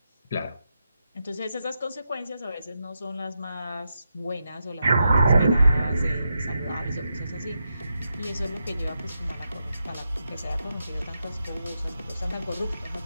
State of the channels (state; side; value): inverted; both; correlation -0.86